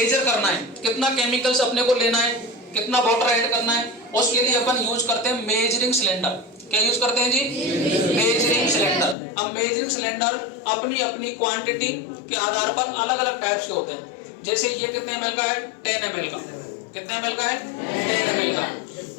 करना है, कितना केमिकल्स अपने को लेना है, कितना वाटर ऐड करना है, उसके लिए अपन यूज करते हैं मेजरिंग सिलेंडर। क्या यूज करते हैं जी? Measuring cylinder. अब मेजरिंग सिलेंडर अपनी अपनी क्वांटिटी के आधार पर अलग अलग टाइप्स के होते हैं। जैसे ये कितने ml का है? 10 ml का। कितने ml का है? 10 ml का।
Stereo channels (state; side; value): drops out; right; at 9.2 s